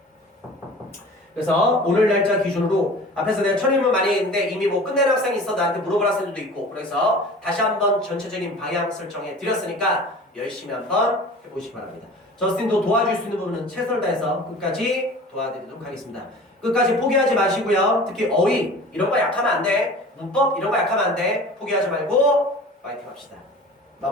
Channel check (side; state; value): both; normal; correlation 0.41